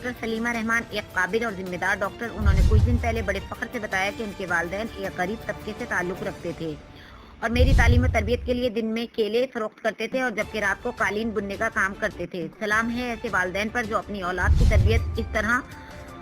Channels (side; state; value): both; identical; correlation 1.00